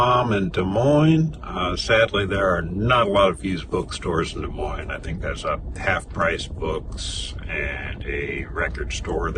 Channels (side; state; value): both; identical; correlation 1.00